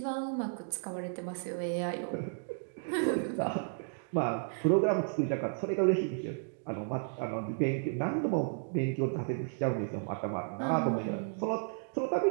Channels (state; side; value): silent; left; digital silence